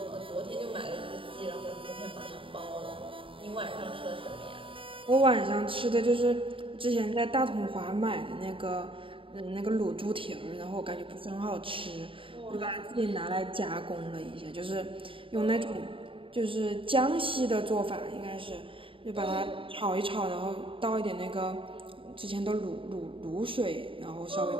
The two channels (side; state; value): left; late; 0.25 ms